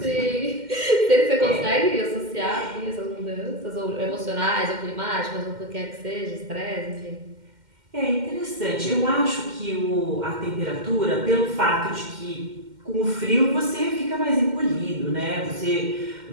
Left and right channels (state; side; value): late; left; 2.1 ms